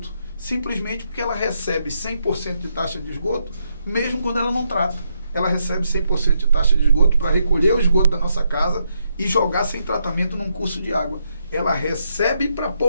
simplesmente porque ela recebe 100% de taxa de esgoto, mesmo quando ela não trata. Ela recebe 100% de taxa de esgoto para recolher o esgoto da nossa casa e jogar sem tratamento num curso de água. Ela recebe para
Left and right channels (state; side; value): inverted; both; correlation -0.79